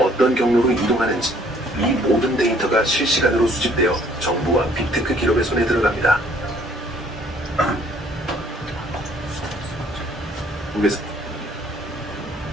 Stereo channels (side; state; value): both; normal; correlation 0.60